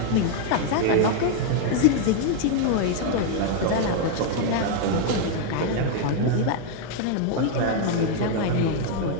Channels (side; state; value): both; different; correlation 0.00